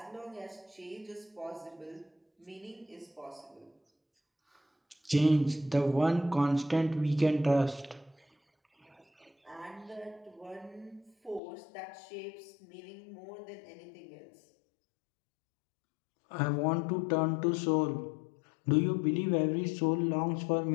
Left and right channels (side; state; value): right; drops out; at 11.4 s